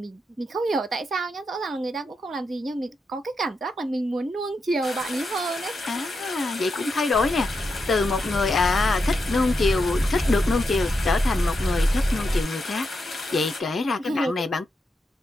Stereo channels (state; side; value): normal; both; correlation 0.85